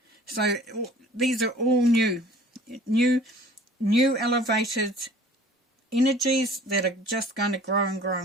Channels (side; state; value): both; normal; correlation 0.50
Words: So these are all new elevated energies that are just going to grow and grow